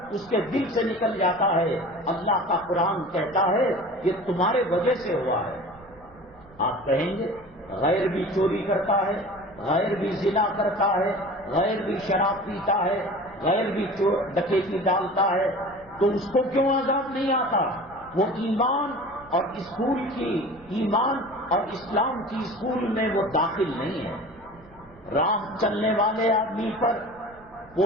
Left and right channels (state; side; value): noise; right; rumble, 25 dB below the sound